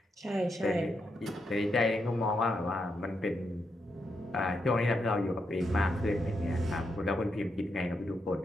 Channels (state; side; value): normal; both; correlation 0.82